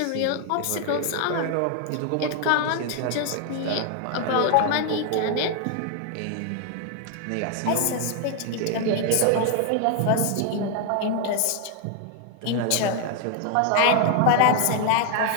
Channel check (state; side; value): different; both; correlation 0.00